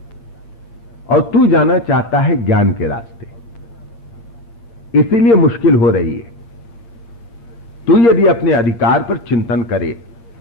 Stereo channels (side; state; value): right; late; 8.7 ms